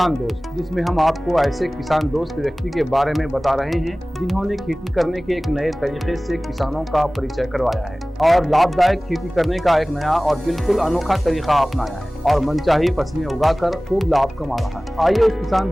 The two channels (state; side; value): normal; both; correlation 0.98